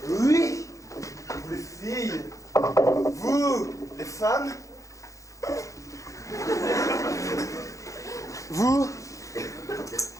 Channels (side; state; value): right; late; 0.16 ms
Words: oui, vous les filles, vous les femmes, vous,